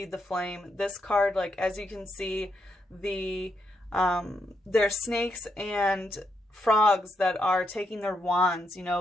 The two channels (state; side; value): normal; both; correlation 0.80